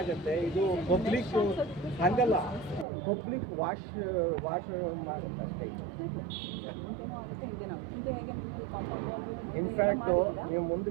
ಇದು ಪಬ್ಲಿಕ್ ಹಂಗಲ್ಲ, ಪಬ್ಲಿಕ್ ವಾಶ್ ಮಾಡುತ್ತಷ್ಟೇ. ಇನ್ಫ್ಯಾಕ್ಟು ನೀವು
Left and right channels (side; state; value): left; drops out; at 2.9 s